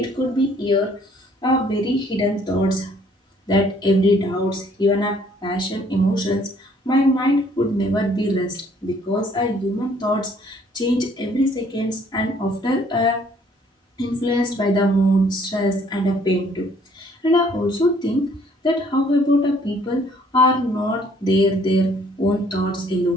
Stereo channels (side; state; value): both; normal; correlation 0.61